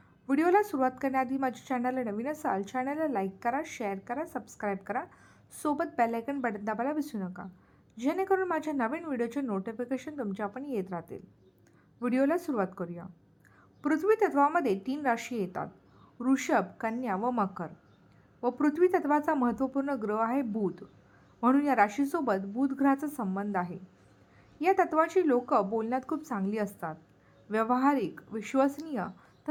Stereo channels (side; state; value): both; identical; correlation 1.00